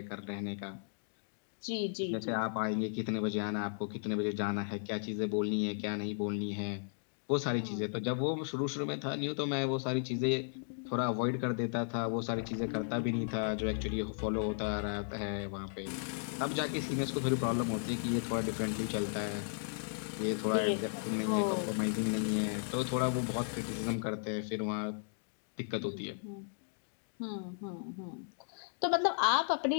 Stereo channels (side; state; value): right; silent; digital silence